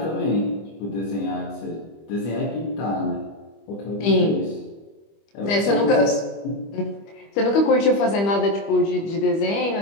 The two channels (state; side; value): late; right; 25 ms